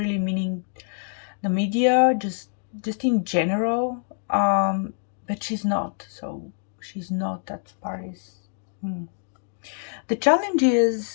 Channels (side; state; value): right; silent; 61 dB below the other